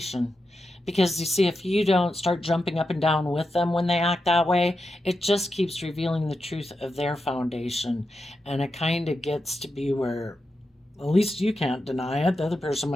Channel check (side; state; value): both; normal; correlation 0.88